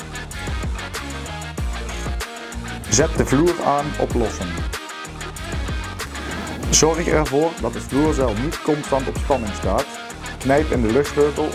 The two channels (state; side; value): identical; both; correlation 1.00